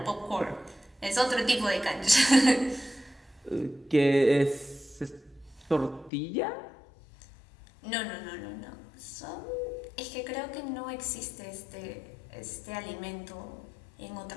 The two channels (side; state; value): right; drops out; at 6.1 s